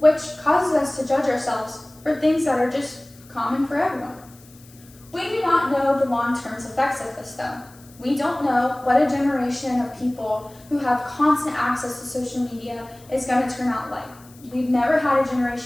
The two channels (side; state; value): left; noise; hiss, 25 dB below the sound